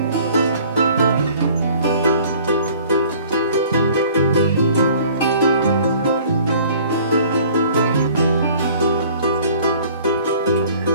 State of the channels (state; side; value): inverted; both; correlation -0.52